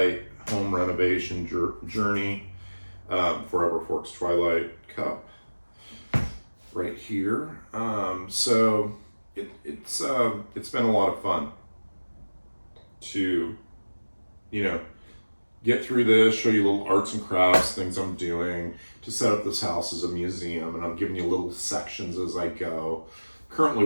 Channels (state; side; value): inverted; both; correlation -1.00